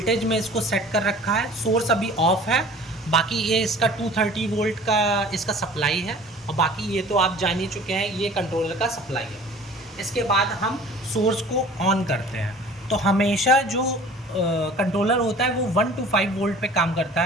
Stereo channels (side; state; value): both; normal; correlation 0.46